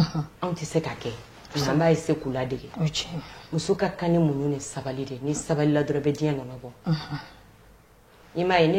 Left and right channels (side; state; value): both; identical; correlation 1.00